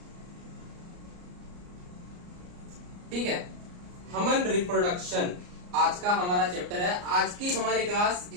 ठीक है, ह्यूमन रिप्रोडक्शन आज का हमारा चैप्टर है। आज की हमारी क्लास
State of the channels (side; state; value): left; late; 34 ms